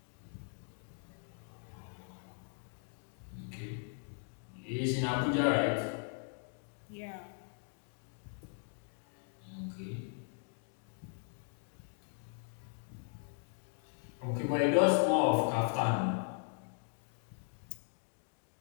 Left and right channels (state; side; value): silent; right; 52 dB below the other